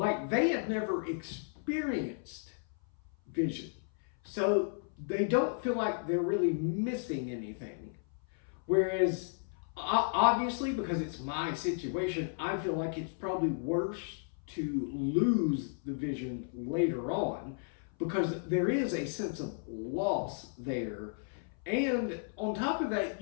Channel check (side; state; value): right; silent; 55 dB below the other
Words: they have never experienced vision. So they don't feel like they're really missing anything. Whereas, obviously, because it's my situation, I feel like it's probably worse to lose the vision later on because there is a sense of loss there. And on top of that,